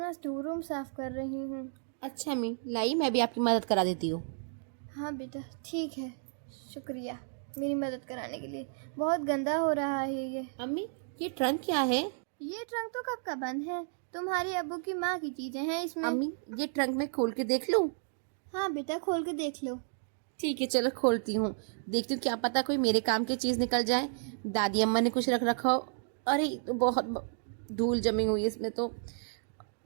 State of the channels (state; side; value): silent; left; digital silence